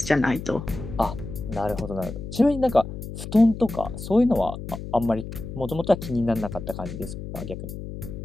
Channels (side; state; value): left; noise; hum, 9 dB below the sound